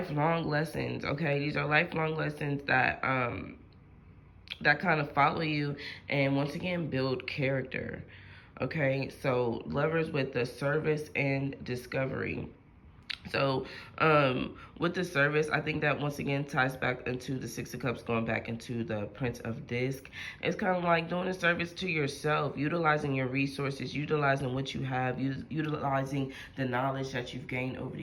lessons. Okay, these are lifelong lessons that that kind of follow you, and once again build character. Okay, so Lovers with the service and discovery. So with the service, I think that once again ties back into the Six of Cups, going back into the Prince of Disc. It's kind of like doing a service to yourself, utilizing your resources, utilizing what you have, utilizing the knowledge that you've gained over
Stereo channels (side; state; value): both; identical; correlation 1.00